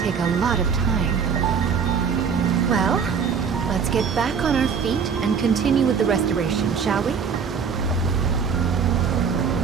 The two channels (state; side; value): quieter; left; 6.4 dB